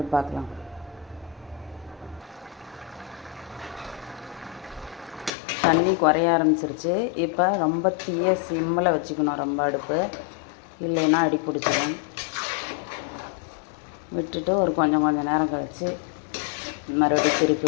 பார்க்கலாம். தண்ணி குறைய ஆரம்பிச்சிருச்சு. இப்போ ரொம்ப தீய சிம்மில் வச்சுக்கணும் ரொம்ப அடுப்பு, இல்லைன்னா அடி பிடிச்சிடும். விட்டுட்டு ஒரு கொஞ்சம் நேரம் கழித்து மறுபடியும் திருப்பி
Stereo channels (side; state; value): right; drops out; at 5.3 s